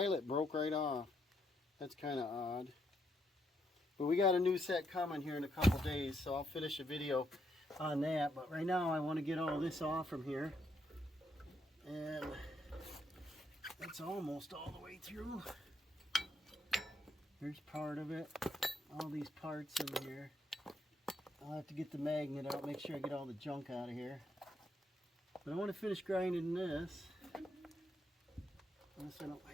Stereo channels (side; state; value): both; normal; correlation 0.76